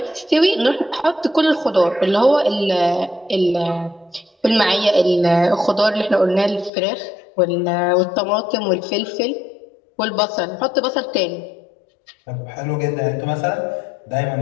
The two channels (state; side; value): drops out; right; at 6.7 s